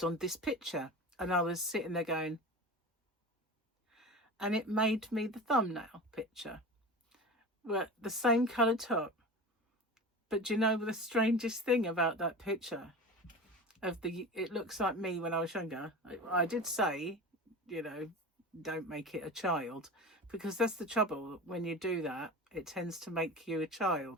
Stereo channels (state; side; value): normal; both; correlation 0.32